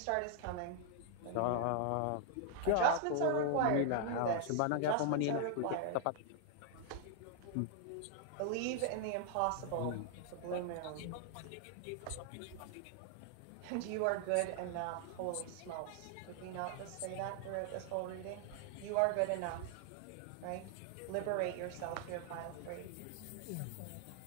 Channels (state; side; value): different; both; correlation 0.00